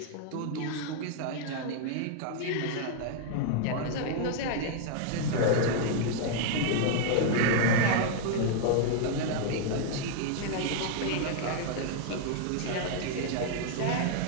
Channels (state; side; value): different; both; correlation -0.01